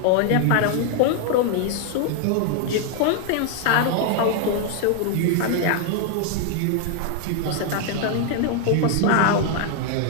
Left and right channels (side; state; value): both; different; correlation 0.00